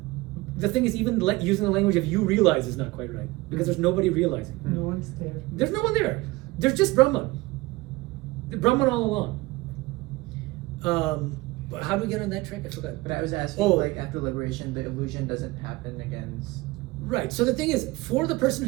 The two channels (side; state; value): left; quieter; 21.1 dB